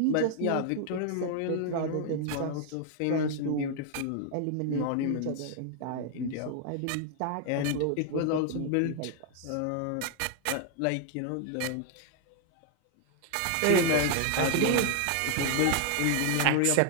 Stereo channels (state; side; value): different; both; correlation 0.00